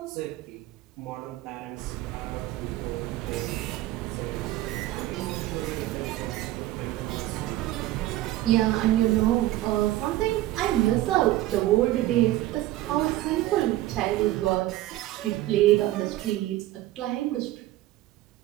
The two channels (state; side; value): quieter; left; 15.8 dB